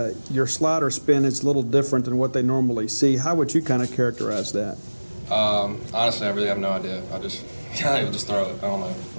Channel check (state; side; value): inverted; both; correlation -1.00